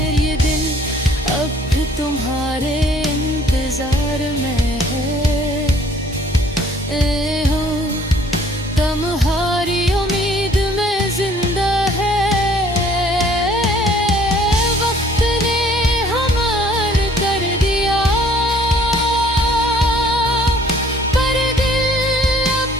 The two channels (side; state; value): both; normal; correlation 0.57